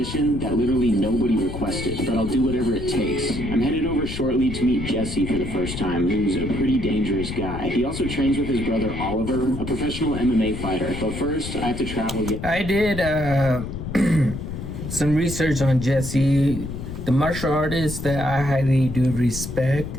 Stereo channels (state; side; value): noise; left; rumble, 7 dB below the sound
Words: that literally nobody requested, but I'll do whatever it takes. I'm headed over shortly to meet Jesse for the first time, who's a pretty dangerous guy. He also trains with his brother Oliver, a professional MMA fighter, but first I have to travel yet. I did some research on Jesse, the martial artist that I highly do respect,